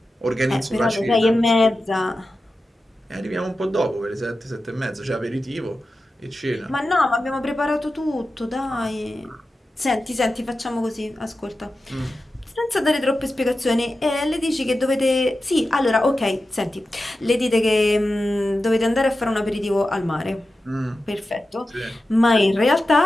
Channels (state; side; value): normal; both; correlation 0.93